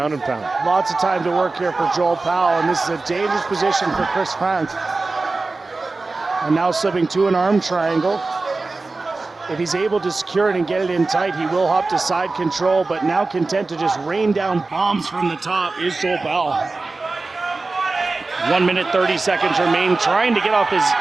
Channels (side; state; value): left; quieter; 3.6 dB